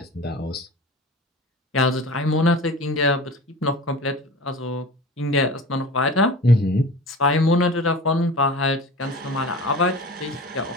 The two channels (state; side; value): normal; both; correlation 0.36